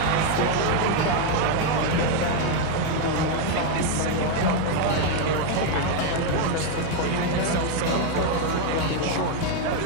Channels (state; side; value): different; both; correlation 0.01